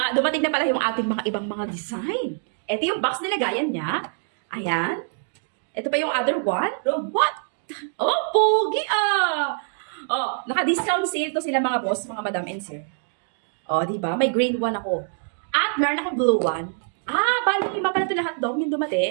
Dumating na pala yung ating mga ibang mga design. Eto yung box nilagayan niya. Ayan. Eto pa yung other one. What? Oh, pogi ah! Oh, naka-discount sale to sila mga boss, mga madam and sir. Oh, di ba? May green one ako. At meron akong blue one. Ah, bali, lima pala ito lahat daw yung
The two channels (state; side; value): silent; left; digital silence